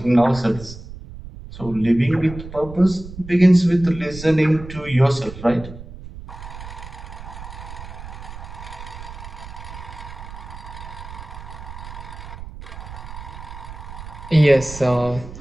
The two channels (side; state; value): right; noise; rumble, 13 dB below the sound